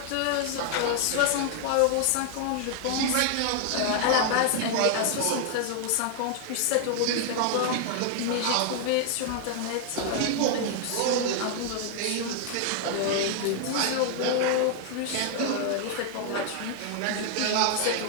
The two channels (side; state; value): both; different; correlation 0.00